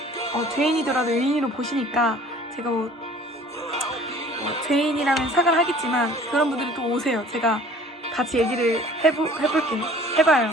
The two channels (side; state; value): both; normal; correlation 0.49